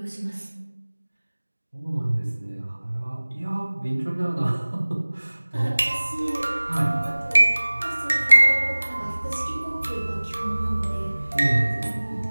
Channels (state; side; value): inverted; both; correlation -1.00